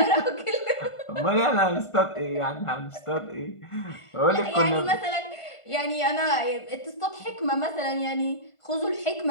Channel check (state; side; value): late; right; 1.5 ms